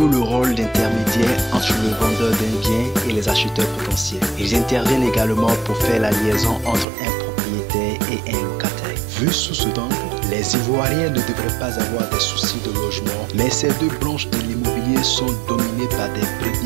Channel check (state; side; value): drops out; left; at 6.9 s